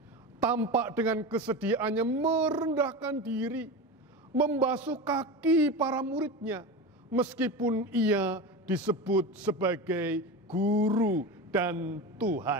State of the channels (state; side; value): normal; both; correlation 0.25